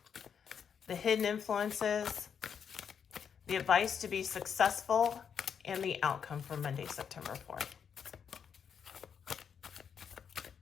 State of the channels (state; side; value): quieter; right; 7.4 dB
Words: the hidden influences, the advice to be successful, and the outcome for Monday, September 4th.